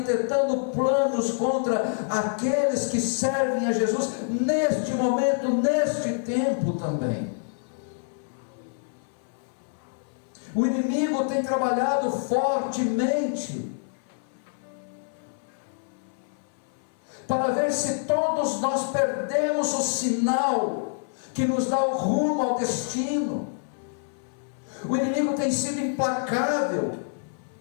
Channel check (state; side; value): silent; right; 60 dB below the other